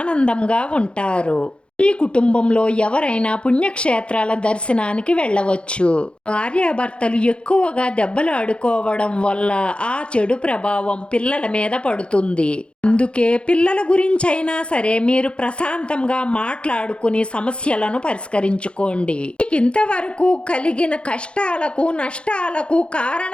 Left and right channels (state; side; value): late; right; 0.057 ms